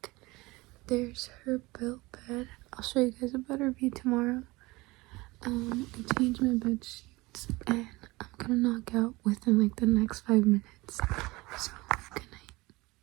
There's her built bed. I'll show you guys a better view tomorrow. I changed my bed sheets, and I'm gonna knock out within like the next 5 minutes. So,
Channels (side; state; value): left; quieter; 21.9 dB